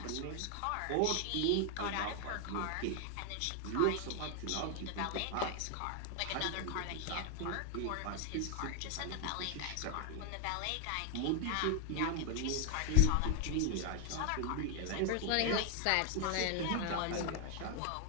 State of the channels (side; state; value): both; different; correlation 0.00